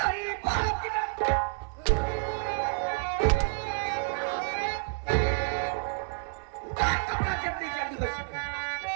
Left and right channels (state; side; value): silent; left; 58 dB below the other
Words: बाप की कपड़ा जल्दी जल्दी हो सके